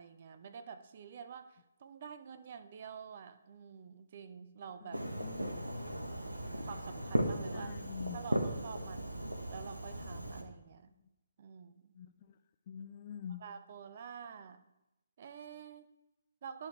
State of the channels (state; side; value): inverted; both; correlation -0.86